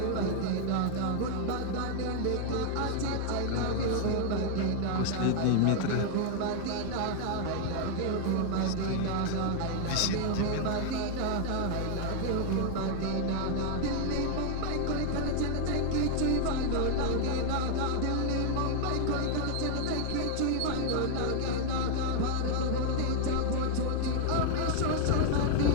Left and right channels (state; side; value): different; both; correlation 0.00